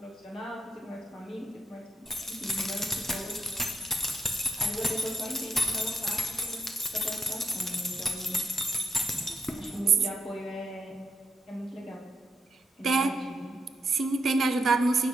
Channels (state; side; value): normal; both; correlation 0.77